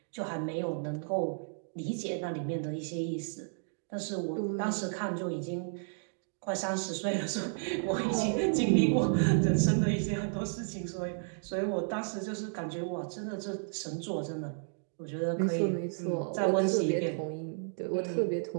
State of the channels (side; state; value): left; silent; digital silence